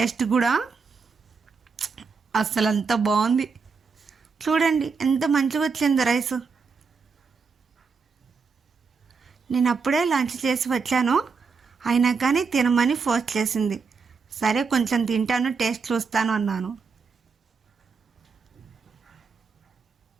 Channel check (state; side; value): quieter; left; 5.1 dB